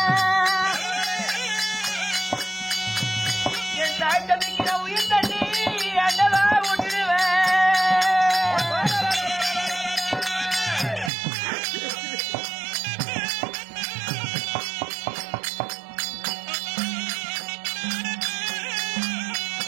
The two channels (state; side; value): drops out; left; at 11.1 s